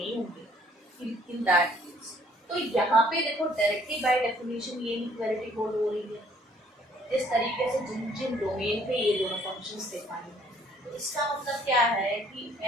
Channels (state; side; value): normal; both; correlation 0.61